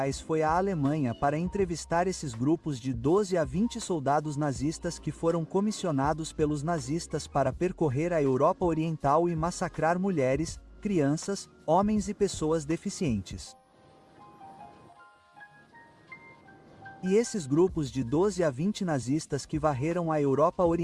foi à Alemanha para entrevistar esses grupos de 12 a 20 soldados nazistas que foram comissionados pelos nazistas para percorrer a Europa Oriental e massacrar mulheres, crianças, homens e pessoas deficientes. E esses grupos de 12 a 20 nazistas que varreram a Europa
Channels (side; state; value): both; identical; correlation 1.00